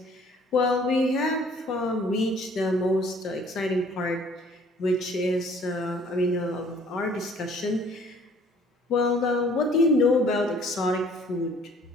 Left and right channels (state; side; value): normal; both; correlation 0.56